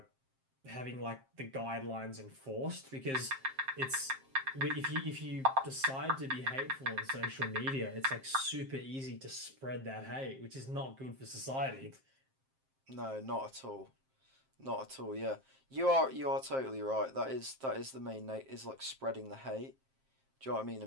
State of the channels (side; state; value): left; late; 7.5 ms